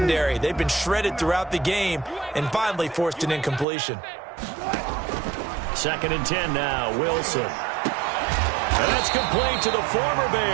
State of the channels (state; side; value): drops out; left; at 3.7 s